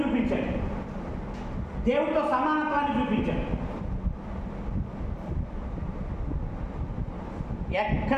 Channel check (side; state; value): both; identical; correlation 1.00